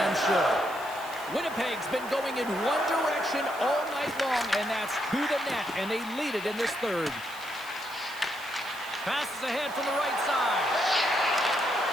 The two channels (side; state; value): right; noise; hiss, 18 dB below the sound